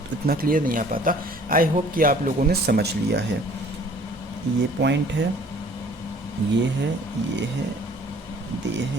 इतना क्लियर नहीं आ पाता। आई होप कि आप लोगों ने समझ लिया है। ये पॉइंट है, ये है, ये है, ये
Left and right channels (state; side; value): normal; both; correlation 0.54